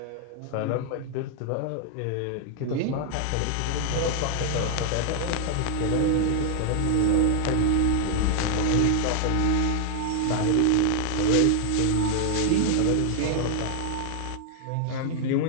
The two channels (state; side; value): different; both; correlation 0.00